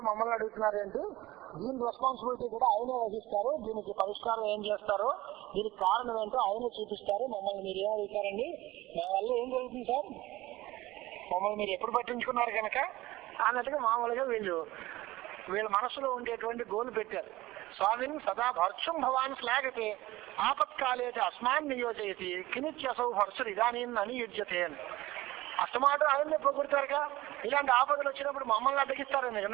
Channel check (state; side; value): quieter; left; 18.0 dB